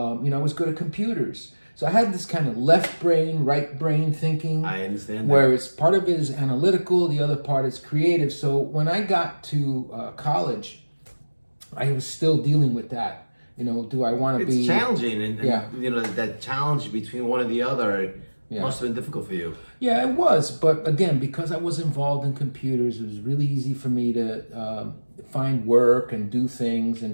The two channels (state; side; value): inverted; both; correlation -1.00